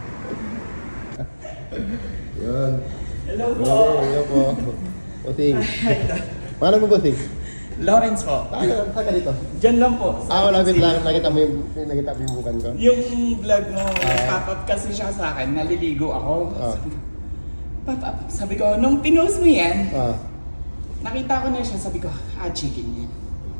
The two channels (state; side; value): inverted; both; correlation -1.00